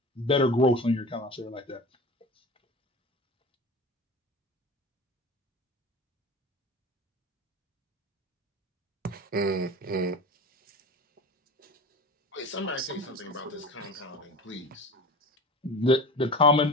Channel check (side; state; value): both; normal; correlation 0.34